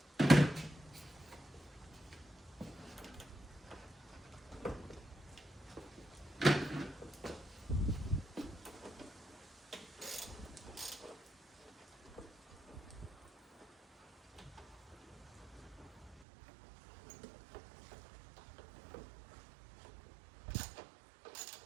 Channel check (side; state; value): left; drops out; at 16.2 s